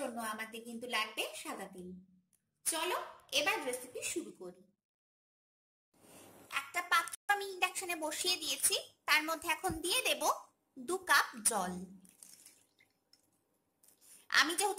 আমাদের কিন্তু লাগবে সাদা তেল। চলো এবার রেসিপি শুরু করি। একটা পাত্র আমি ইন্ডাকশনে বসিয়ে দিয়েছি, তার মধ্যে এখন দিয়ে দেব 2 কাপ জল। আমি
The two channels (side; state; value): both; identical; correlation 1.00